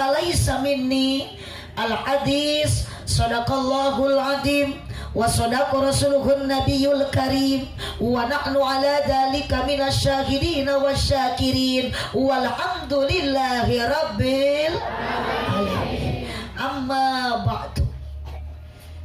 minni. Al-hadis sadaqallahul azim wa sadaqa rasuluhun nabiyul karim wa nahnu ala dhalika minasyahidin wasyakirin walhamdulillahi rabbil alamin. Amma ba'du.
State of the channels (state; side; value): identical; both; correlation 1.00